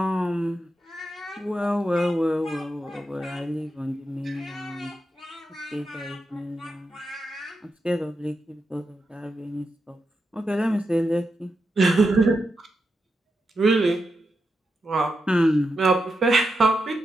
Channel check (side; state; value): both; normal; correlation 0.87